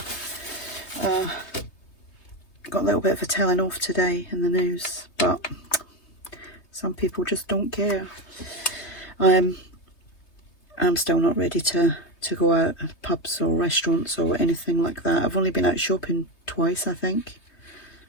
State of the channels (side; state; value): right; late; 3.2 ms